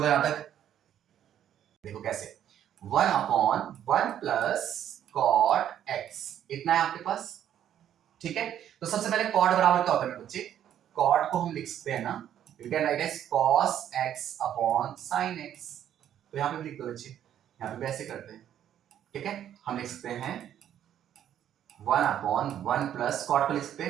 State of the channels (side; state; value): left; quieter; 10.5 dB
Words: यहां तक? देखो कैसे, 1 अपॉन 1 प्लस कॉट एक्स, इतना है आपके पास। ठीक है, तो सबसे पहले कॉट बराबर क्या होता है मेरे बच्चे, कॉट को हम लिख सकते हैं ना, you can write as cos x upon sin x, तो यहां पे लिख दो बच्चे, यहां पे भी ऐसे करते हैं। ठीक है, हम लिख सकते हैं 1 अपॉन 1 प्लस कॉट को लिख सकते